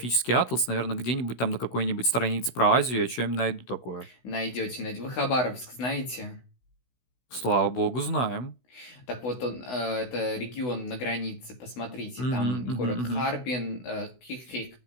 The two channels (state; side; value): late; right; 16 ms